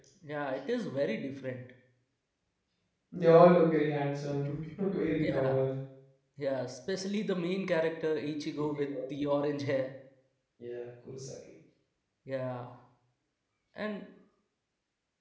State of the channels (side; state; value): both; identical; correlation 1.00